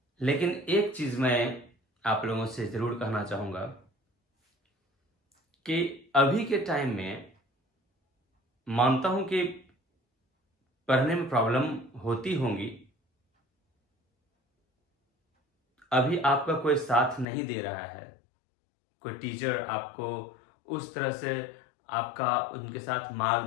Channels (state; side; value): drops out; right; at 17.2 s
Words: लेकिन एक चीज मैं आप लोगों से जरूर कहना चाहूंगा कि अभी के टाइम में मानता हूं कि पढ़ने में प्रॉब्लम होती होंगी। अभी आपका कोई साथ नहीं दे रहा है, कोई टीचर आपको उस तरह से आपका उनके साथ